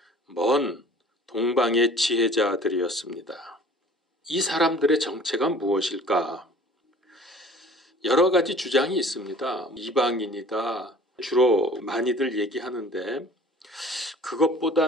먼 동방의 지혜자들이었습니다. 이 사람들의 정체가 무엇일까? 여러 가지 주장이 있습니다. 이방인이다. 주로 많이들 얘기하는데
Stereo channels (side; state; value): both; normal; correlation 0.48